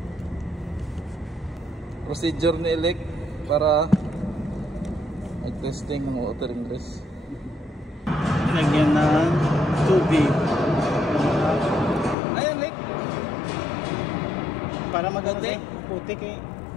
Procedure ni Elec para mag-testing ng water ingress. Lagyan ng tubig. Ayan, Elec. Para maganda putik eh.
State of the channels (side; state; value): right; drops out; at 12.2 s